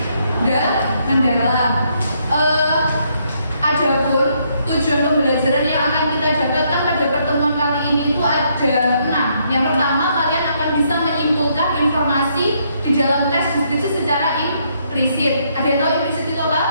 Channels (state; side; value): inverted; both; correlation -0.73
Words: mendalam. Adapun tujuan pembelajaran yang akan kita dapatkan pada pertemuan kali ini itu ada 6. Yang pertama, kalian akan bisa menyimpulkan informasi di dalam teks deskripsi secara implisit. Ada yang tahu implisit itu apa?